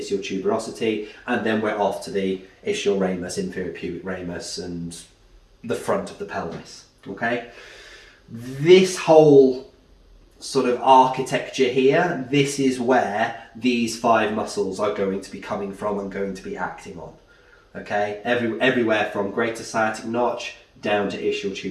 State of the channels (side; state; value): both; identical; correlation 1.00